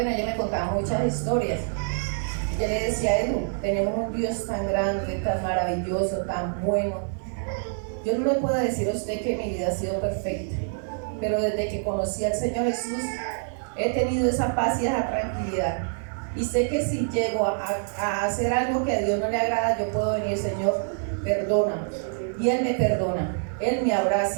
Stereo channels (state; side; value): silent; left; 61 dB below the other